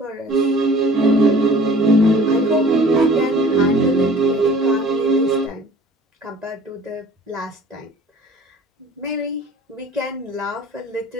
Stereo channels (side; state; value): both; normal; correlation 0.48